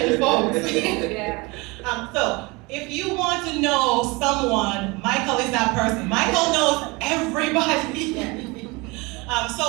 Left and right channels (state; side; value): quieter; left; 25.6 dB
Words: folks. So if you want to know someone, Michael is that person. Michael knows everybody.